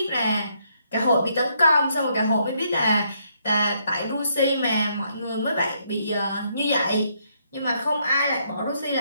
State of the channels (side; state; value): both; inverted; correlation -0.73